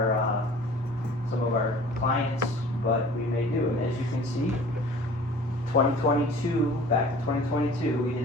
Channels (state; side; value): normal; both; correlation 0.46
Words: some of our clients, but we may do. And as you can see, 2022, back to 2022, we